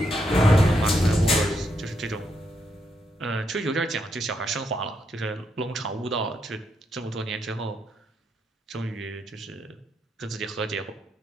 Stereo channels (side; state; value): both; normal; correlation 0.79